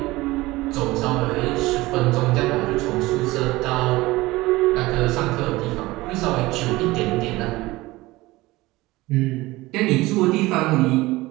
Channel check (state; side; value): quieter; left; 19.7 dB